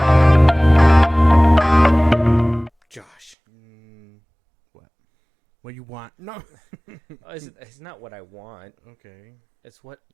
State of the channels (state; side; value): drops out; left; at 3.4 s